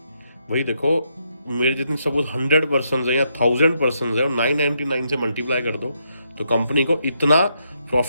वही देखो मेरे जितनी सपोज 100 पर्सन है या 1000 पर्सन है, और 999 से मल्टीप्लाई कर दो तो कंपनी को इतना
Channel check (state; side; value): inverted; both; correlation -0.78